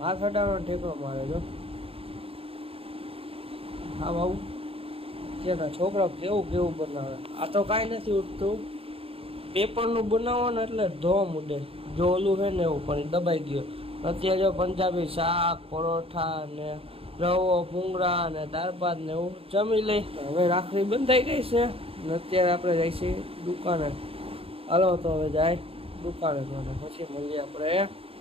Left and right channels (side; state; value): left; late; 0.27 ms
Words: હાથ અડાડો ઠેકરો મારે જો આમ આવું. અત્યારના છોકરા કેવું કેવું બનાવે. આ તો કાંઈ નથી ઉઠતું, પેપરનું બનાવો ને એટલે ધોમ ઉડે. જો ઓલું છે ને એવું પણ દબાઈ ગયો. અત્યારે જો પંજાબી શાક પરોઠા ને રવો ભૂંગળા ને દાળ ભાત ને એવું જમી લઈ. હવે રાખડી બંધાઈ ગઈ છે ને અત્યારે આપણે જઈશું દુકાને. હાલો તો હવે જાય દુકાને પછી મળીએ આપણે